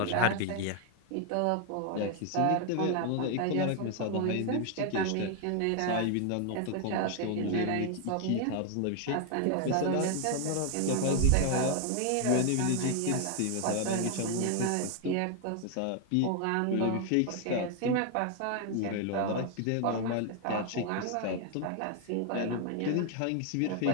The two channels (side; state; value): both; different; correlation 0.00